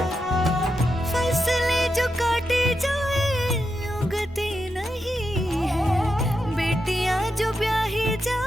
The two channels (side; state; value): both; normal; correlation 0.86